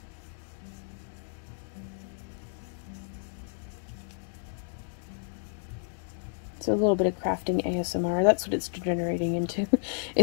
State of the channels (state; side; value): silent; right; digital silence